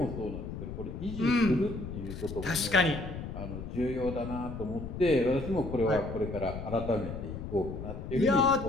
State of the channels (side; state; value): left; noise; rumble, 8 dB below the sound